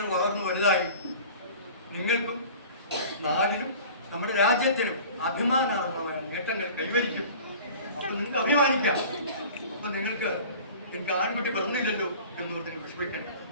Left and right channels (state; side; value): inverted; both; correlation -0.41